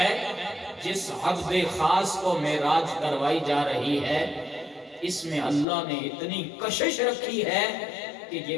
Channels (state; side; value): drops out; right; at 5.7 s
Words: جس عبد خاص کو معراج کروائی جا رہی ہے اس میں اللہ نے اتنی کشش رکھی ہے کہ